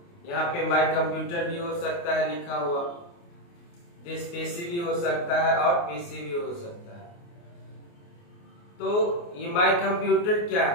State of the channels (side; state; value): right; late; 29 ms